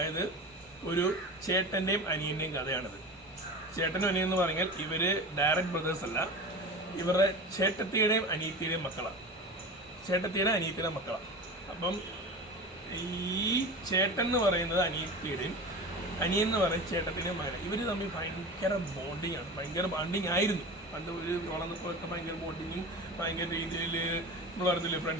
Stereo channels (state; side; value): normal; both; correlation 0.31